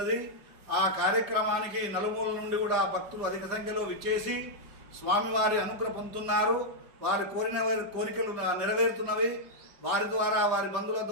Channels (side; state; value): left; late; 5.1 ms